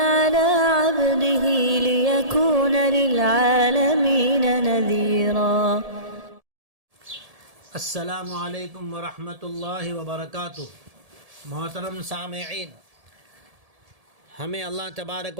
عبده ليكون للعالمين نذيرا۔ السلام علیکم ورحمۃ اللہ وبرکاتہ۔ محترم سامعین، ہمیں اللہ تبارک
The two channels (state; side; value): late; left; 1.7 ms